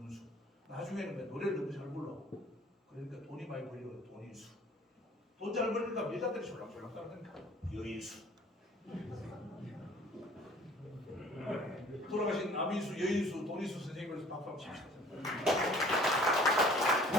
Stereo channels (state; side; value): normal; both; correlation 0.51